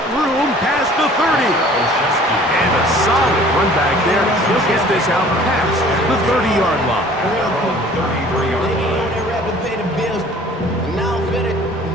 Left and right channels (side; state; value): both; normal; correlation 0.50